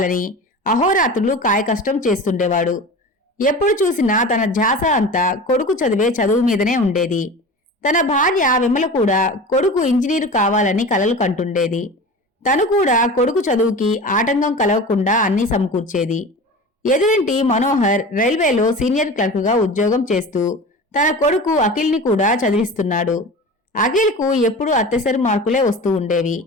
అహోరాత్రులు కాయకష్టం చేస్తుండేవాడు. ఎప్పుడు చూసినా తన ధ్యాస అంతా కొడుకు చదివే చదువు మీదనే ఉండేది. తన భార్య విమల కూడా కొడుకు ఇంజనీరు కావాలని కలలు కంటుండేది. తను కూడా కొడుకు చదువుకి ఆటంకం కలగకుండా అన్నీ సమకూర్చేది. ఎదురింటి మనోహర్ రైల్వేలో సీనియర్ క్లర్క్గా ఉద్యోగం చేస్తూ తన కొడుకు అఖిల్ని కూడా చదివిస్తున్నాడు. అఖిల్కు ఎప్పుడూ అత్యసరి మార్కులే వస్తూ ఉండేవి.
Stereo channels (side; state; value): both; normal; correlation 0.34